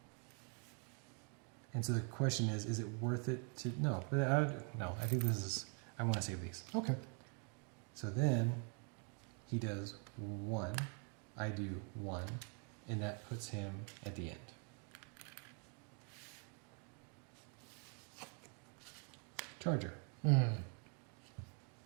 And so the question is it worth it to... No, I think this is... I want to save these. Okay. So then he does 1, I do 1, and that puts him at the end. Charger.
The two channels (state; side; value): quieter; left; 38.2 dB